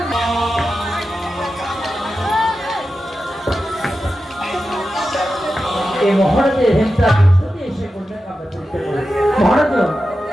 এই মহারাজের হিংসা প্রস্তুতি এসে করলেন আমরা চলতে পারি। মহারাজ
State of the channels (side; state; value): both; normal; correlation 0.91